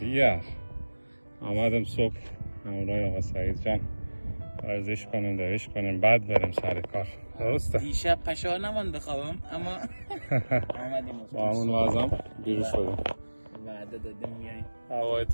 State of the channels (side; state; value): both; inverted; correlation -1.00